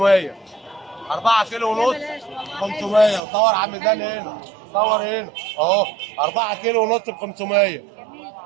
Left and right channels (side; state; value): left; drops out; at 3.2 s